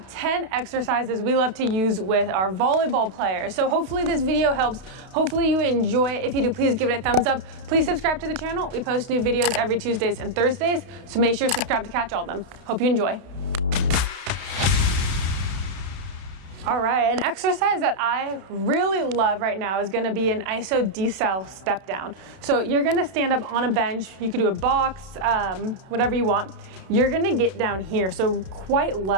10 exercises we love to use with our volleyball players. So hopefully this video helps. Hopefully you enjoy it. If you do, please give it a thumbs up. Please subscribe to the channel. We post new videos every Tuesdays and Thursdays, so make sure to subscribe to catch all of them. Hope you enjoy. All right, an exercise that I really love right now is gonna be an iso decel step down. So you're gonna stand up on a bench, you could do a box, whatever you want. You're gonna get down here, so quite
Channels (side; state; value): left; late; 32 ms